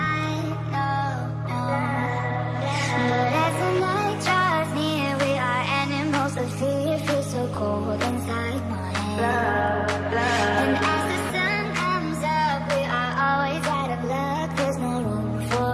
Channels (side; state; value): both; identical; correlation 1.00